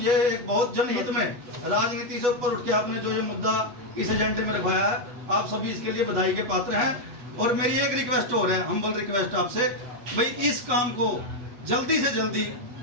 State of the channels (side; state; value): left; late; 8.1 ms